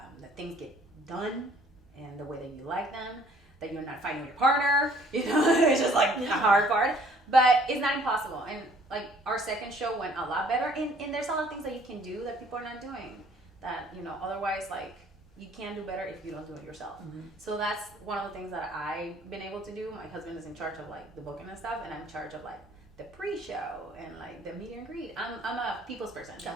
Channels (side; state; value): both; normal; correlation 0.58